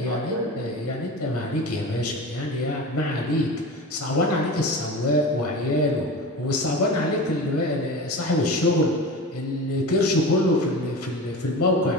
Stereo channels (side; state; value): both; normal; correlation 0.31